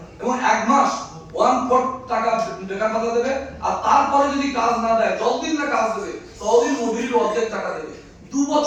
এবং 1 মাস 1/4 টাকা বেকার ভাতা দেবে। আর তারপরে যদি কাজ না দেয়, যতদিন না কাজ দেবে ততদিন মজুরির অর্ধেক টাকা দেবে। 2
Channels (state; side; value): identical; both; correlation 1.00